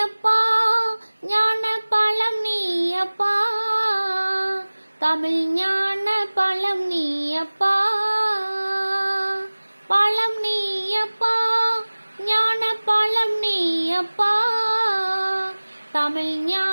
ஞான பழம் நீயப்பா, தமிழ் ஞான பழம் நீயப்பா. பழம் நீயப்பா, ஞான பழம் நீயப்பா, தமிழ்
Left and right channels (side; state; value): both; inverted; correlation -1.00